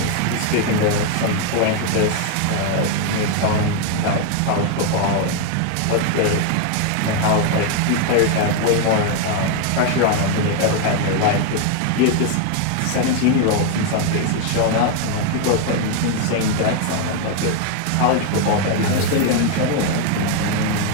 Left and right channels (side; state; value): both; different; correlation 0.01